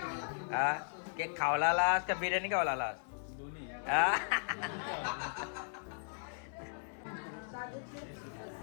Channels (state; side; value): silent; right; digital silence